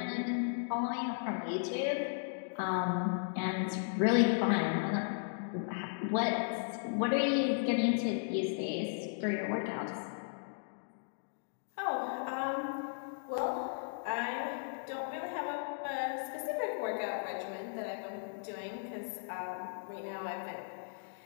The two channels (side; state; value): right; silent; digital silence